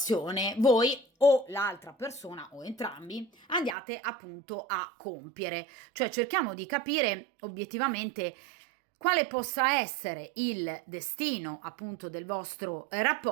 voi o l'altra persona o entrambi andiate appunto a compiere. Cioè cerchiamo di capire obiettivamente quale possa essere il destino appunto del vostro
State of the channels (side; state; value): left; drops out; at 3.8 s